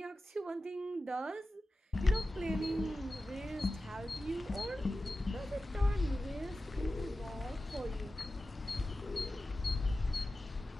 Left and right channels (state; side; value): normal; both; correlation 0.94